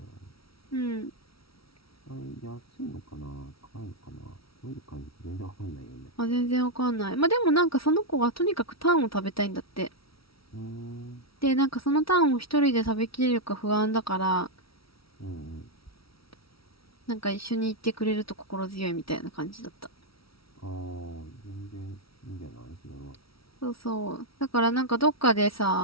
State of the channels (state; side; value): late; right; 0.75 ms